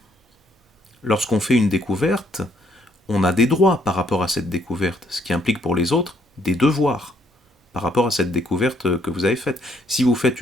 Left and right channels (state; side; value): normal; both; correlation 0.69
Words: Lorsqu'on fait une découverte, on a des droits par rapport à cette découverte, ce qui implique pour les autres des devoirs par rapport à cette découverte que vous avez faite. Si vous faites